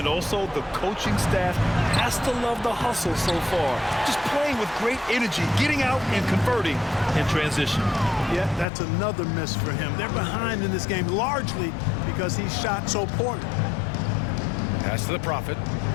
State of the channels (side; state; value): right; drops out; at 8.7 s